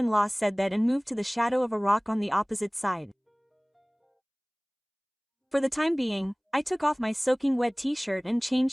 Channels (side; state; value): both; identical; correlation 1.00